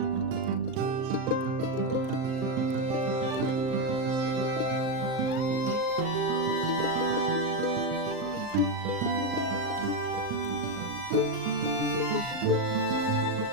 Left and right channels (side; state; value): left; late; 39 ms